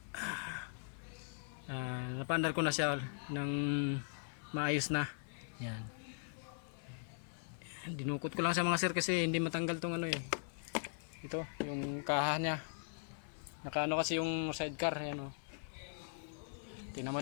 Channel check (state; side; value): silent; right; 51 dB below the other